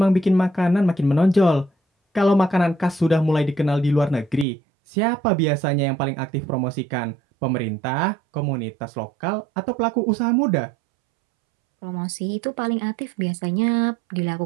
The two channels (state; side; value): drops out; left; at 4.5 s